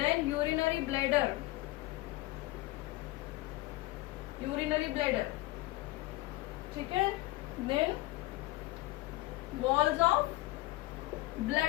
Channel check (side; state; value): right; quieter; 19.2 dB